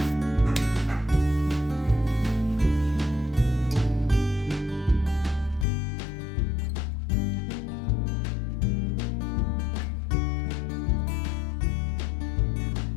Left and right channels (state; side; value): drops out; right; at 5.7 s